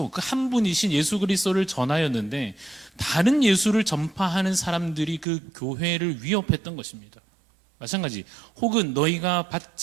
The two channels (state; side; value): drops out; left; at 5.2 s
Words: 그 한 분이신 예수 그리스도를 전하였는데 다른 예수를 전파하는 사람들이 그 교회를 위협했던 것입니다. 마찬가지, 혹은 너희가